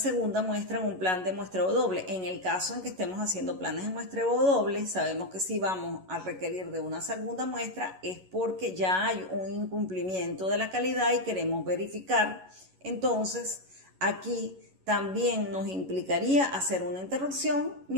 muestra en un plan de muestreo doble. En el caso en que estemos haciendo planes de muestreo doble, sabemos que si vamos a requerir de una segunda muestra es porque ya hay un incumplimiento de la calidad y queremos verificar Entonces, aquí también nos implicaría hacer una interrupción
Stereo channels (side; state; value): left; late; 11 ms